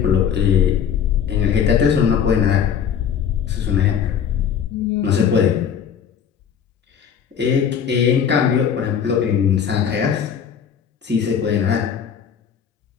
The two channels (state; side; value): quieter; right; 7.9 dB